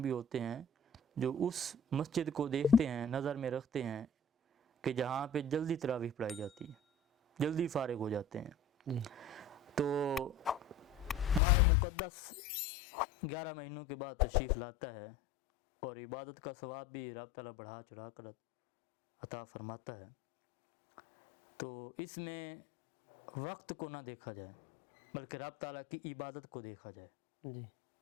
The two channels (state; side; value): drops out; right; at 11.4 s